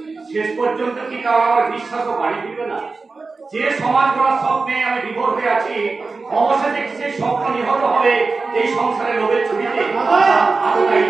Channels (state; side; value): quieter; left; 4.0 dB